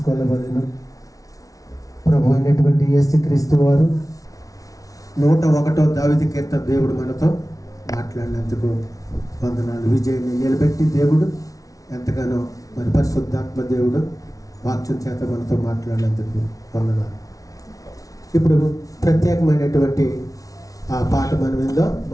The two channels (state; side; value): late; right; 0.17 ms